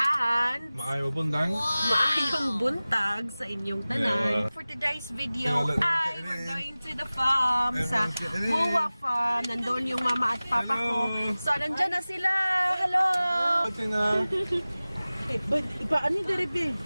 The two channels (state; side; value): inverted; both; correlation -0.98